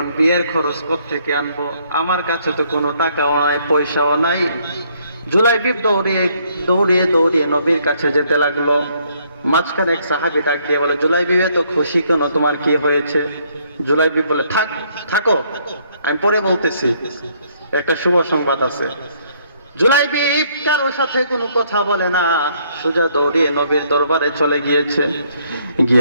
বিয়ের খরচ কোত্থেকে আনবো? আমার কাছে তো কোনো টাকাও নাই, পয়সাও নাই। জুলাইবিব দৌড়িয়ে দৌড়িয়ে দৌড়িয়ে নবীর কাছে যেতে লাগলো। মাঝখানে এক সাহাবী ডাক দিয়ে বলে, জুলাইবিব এত খুশি কেন, তোমার কি হয়েছে? জুলাইবিব বলে, থাকো আমি পরে বলতেছি, একটা শুভ সংবাদ আছে। জুলাইবিব কারোর সাথে কোনো কথা বলে না, সোজা দৌড়িয়ে নবীর দরবারে চলে গিয়েছে।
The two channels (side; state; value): both; inverted; correlation -0.68